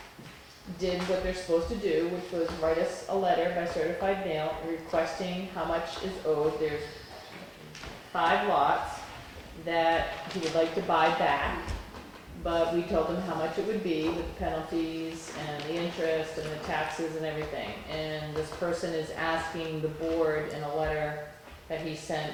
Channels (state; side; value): identical; both; correlation 1.00